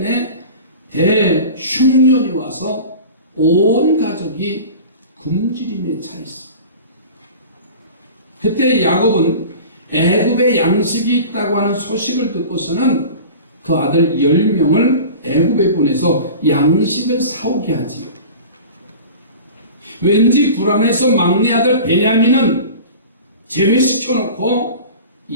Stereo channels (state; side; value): inverted; both; correlation -0.37